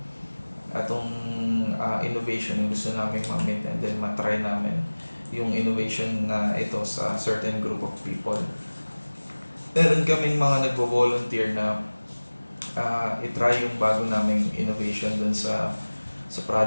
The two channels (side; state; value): both; inverted; correlation -1.00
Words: Itong innovation yung gusto namin ma-meet, and then matry namin yung innovation na ito sa certain group of people. Meron kaming mga nagvo-volunteer na itry yung bago naming innovation dun sa